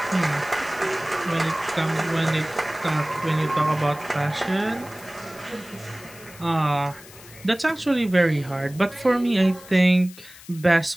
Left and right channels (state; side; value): noise; left; hiss, 20 dB below the sound